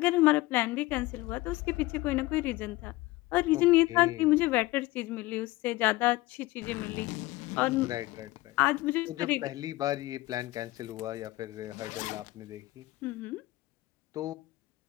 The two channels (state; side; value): quieter; right; 19.3 dB